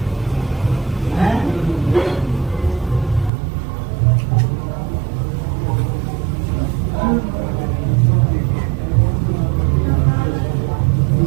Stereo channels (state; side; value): drops out; left; at 3.3 s